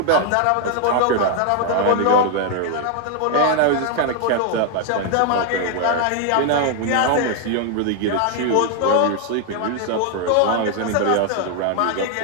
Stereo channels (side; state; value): both; different; correlation 0.00